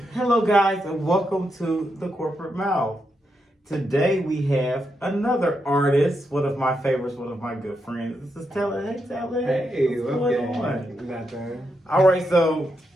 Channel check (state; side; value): normal; both; correlation 0.83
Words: Hello guys and welcome to the corporate mouth. Today we have another artist, one of my favorites, one of my good friends. This is Telid. Hey Telid. Hey, what's going on? Nothing. Alright, so